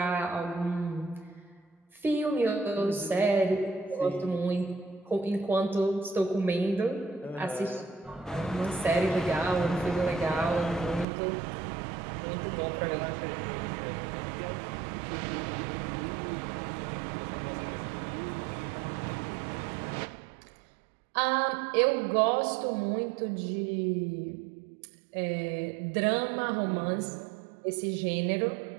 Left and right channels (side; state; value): left; drops out; at 11.1 s